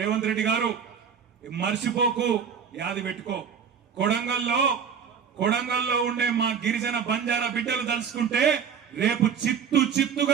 రేవంత్ రెడ్డి గారు మర్చిపోకు, యాది పెట్టుకో. కొడంగల్లో ఉండే మా గిరిజన బంజారా బిడ్డలు తలుసుకుంటే రేపు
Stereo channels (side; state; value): left; quieter; 7.2 dB